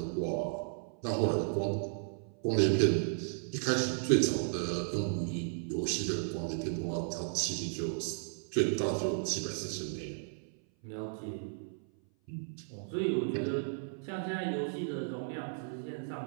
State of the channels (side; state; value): left; silent; 55 dB below the other